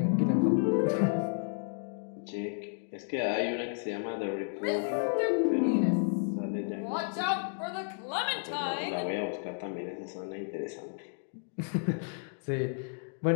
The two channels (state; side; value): silent; right; 56 dB below the other